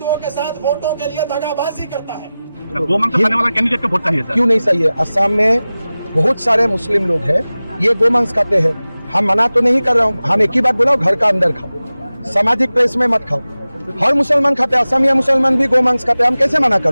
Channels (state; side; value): inverted; both; correlation -0.96